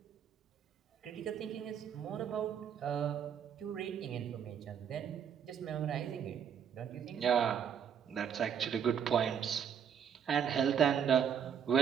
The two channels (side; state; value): left; quieter; 8.1 dB